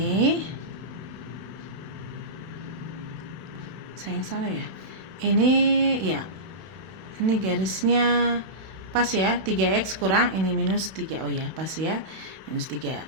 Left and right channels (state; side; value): late; left; 31 ms